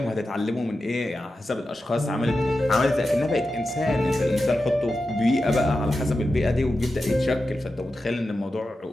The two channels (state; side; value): normal; both; correlation 0.91